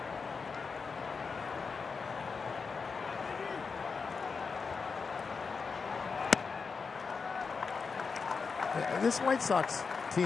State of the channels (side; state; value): right; quieter; 5.1 dB